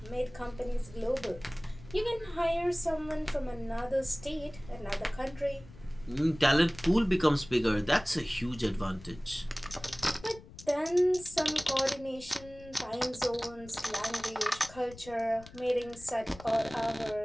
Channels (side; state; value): left; noise; rumble, 19 dB below the sound